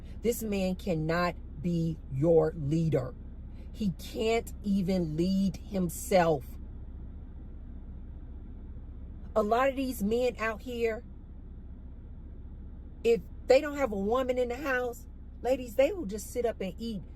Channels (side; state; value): both; identical; correlation 1.00